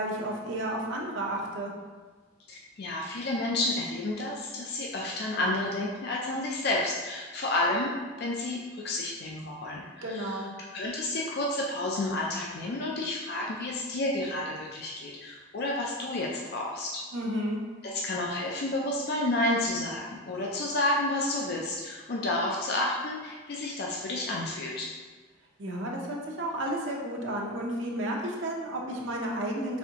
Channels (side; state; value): both; normal; correlation 0.16